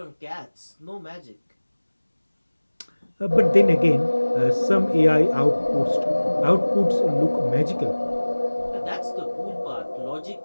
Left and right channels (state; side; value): inverted; both; correlation -1.00